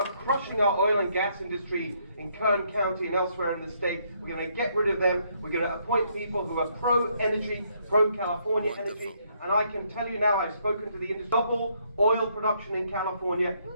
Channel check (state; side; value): inverted; both; correlation -0.71